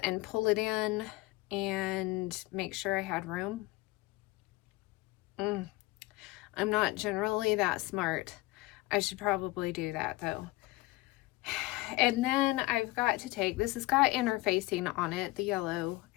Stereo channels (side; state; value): right; quieter; 20.3 dB